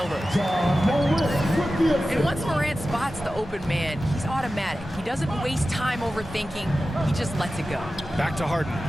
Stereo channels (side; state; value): both; normal; correlation 0.94